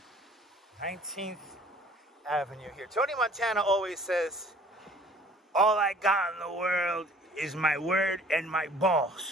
19th Avenue here. Tony Montana always says, all I got in the world is my word and my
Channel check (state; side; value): normal; both; correlation 0.53